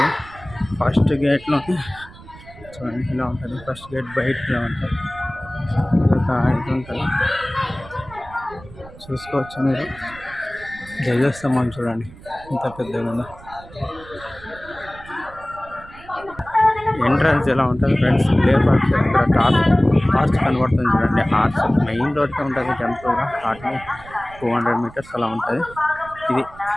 ఫస్ట్ గేట్లో చూడండి ఇలా ఉంటుంది. ఫస్ట్ గేట్ బయటలో ఉంటుంది. ఇదొక ఇది ఉంటుంది చూసుకోవచ్చు మీరు. ధ్వజస్తంభం చూడండి ఇంత పెద్దగా ఉందో. ఎంట్రన్స్ ఎలా ఉంటుంది ఫ్రెండ్స్. లేపాక్ష ఇక్కడ ఆర్చ్ కనబడుతుంది చూడండి. ఆర్చ్ మెయిన్ రోడ్కి ఉంటుంది టెంపుల్గా. వాటిని 200 meters అలా ఉంటుంది. ఇది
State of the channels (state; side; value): noise; right; rumble, 19 dB below the sound